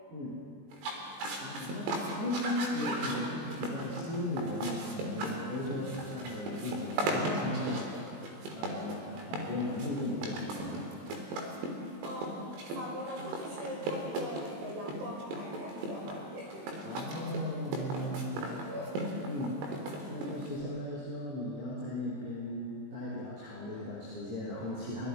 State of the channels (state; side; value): late; left; 21 ms